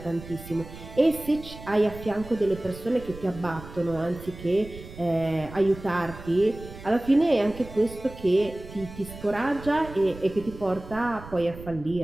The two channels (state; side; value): noise; right; rumble, 15 dB below the sound